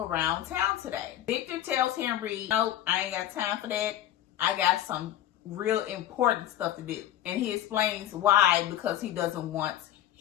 town today. Victor tells Henry, nope, I ain't got time for that. I got some real important stuff to do. And he explains why, because he doesn't want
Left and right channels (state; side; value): quieter; right; 12.4 dB